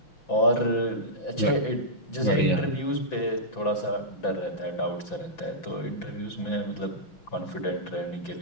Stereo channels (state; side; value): late; right; 6.0 ms